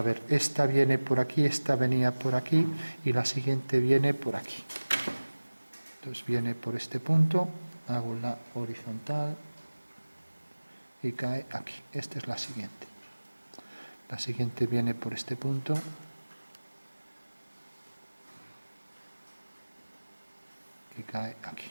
ver, esta viene por aquí, esta venía por aquí y la siguiente viene por aquí. Entonces viene por este punto, hago la horizontal y cae aquí. Esta es la siguiente. La siguiente viene por este punto. Y cae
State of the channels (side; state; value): both; inverted; correlation -1.00